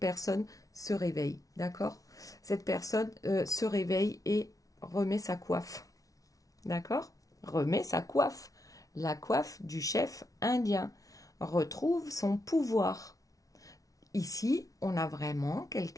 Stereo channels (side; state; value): right; late; 0.17 ms